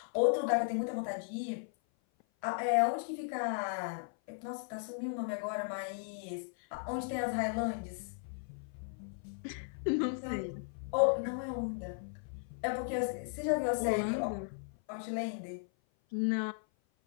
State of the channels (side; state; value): right; silent; 54 dB below the other